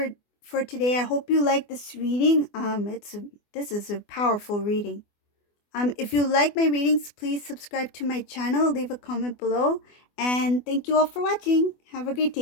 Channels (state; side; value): late; right; 24 ms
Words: today. I hope you like this reading. This is a powerful reading. If you like my readings, please subscribe to my channel, leave a comment below, and thank you all for watching. Have a great